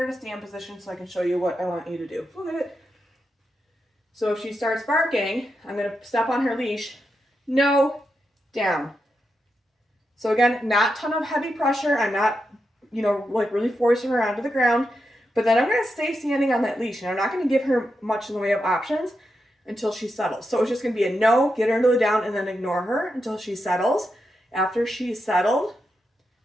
in a stand position so I can show you what I want you to do. Look at it. So if she starts barking, I'm going to step on her leash. No, down. So again, not a ton of heavy pressure. I'm not, like really forcing her onto the ground. But then I'm going to stay standing on that leash. And I'm not going to give her much in the way of options until she settles. So it's just going to be a no, get her into the down, and then ignore her until she settles. After she's settled,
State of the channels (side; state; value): both; normal; correlation 0.86